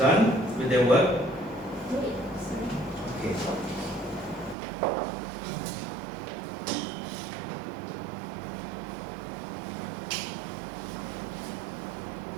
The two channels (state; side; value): drops out; left; at 4.5 s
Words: with their work? Wait, sorry. Okay.